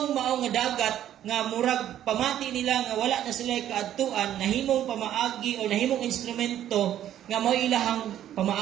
mao nga dagat nga murag pamati nila nga wala na sila kaadtuan, nahimong pamaagi o nahimong instrumento nga mao ilahang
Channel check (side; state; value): left; quieter; 11.4 dB